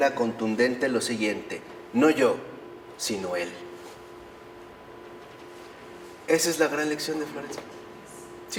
contundente lo siguiente: no yo, sino Él. Esa es la gran lección de Florencia.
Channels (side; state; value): both; identical; correlation 1.00